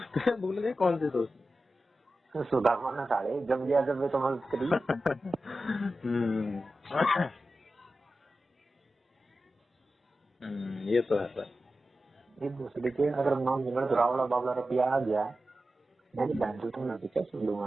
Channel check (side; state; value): both; normal; correlation 0.92